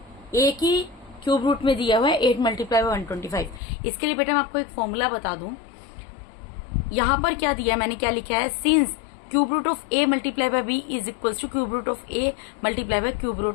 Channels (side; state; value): right; drops out; at 3.6 s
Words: एक ही क्यूब रूट में दिया हुआ है 8 मल्टीप्लाई बाय 125। इसके लिए बेटा मैं आपको एक फॉर्मूला बता दूं। यहां पर क्या दिया है, मैंने क्या लिखा है, since cube root of A multiply by B is equal to cube root of A multiply by cube